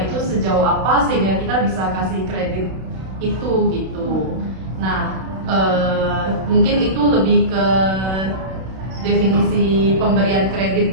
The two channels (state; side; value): late; left; 32 ms